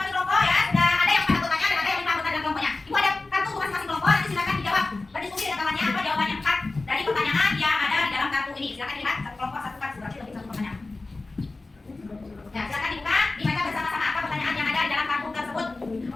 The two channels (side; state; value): right; quieter; 3.3 dB